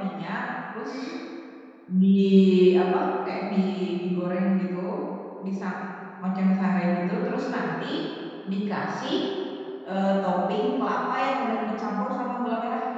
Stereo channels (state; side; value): identical; both; correlation 1.00